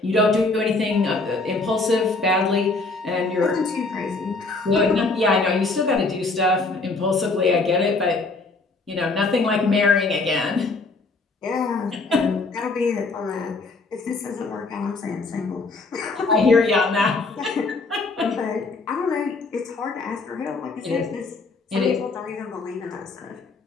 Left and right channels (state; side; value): quieter; right; 3.6 dB